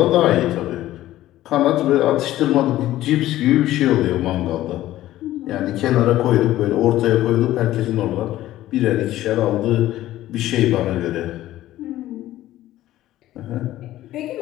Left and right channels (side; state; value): right; quieter; 14.6 dB